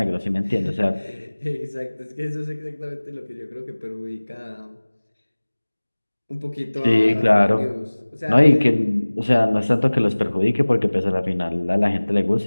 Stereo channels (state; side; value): inverted; both; correlation -1.00